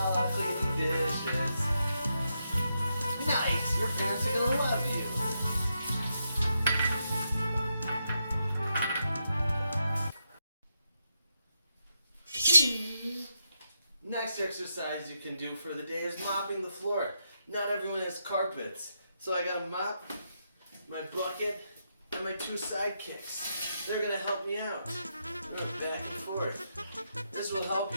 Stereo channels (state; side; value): inverted; both; correlation -0.83